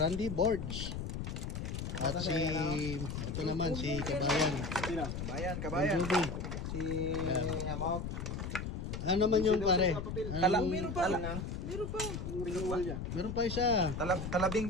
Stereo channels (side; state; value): left; noise; rumble, 5 dB below the sound